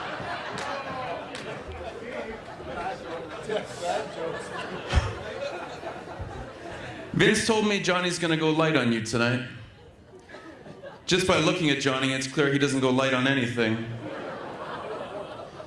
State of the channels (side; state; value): both; identical; correlation 1.00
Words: Vince told me Johnny's gonna go light on you tonight. Just by looking at Johnny, it's clear he doesn't go light on anything.